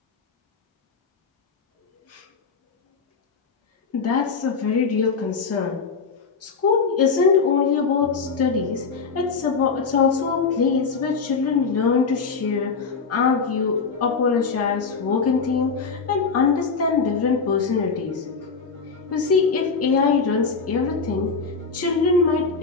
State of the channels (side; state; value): right; quieter; 5.0 dB